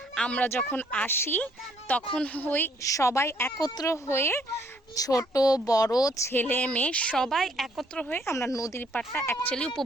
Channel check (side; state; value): both; normal; correlation 0.66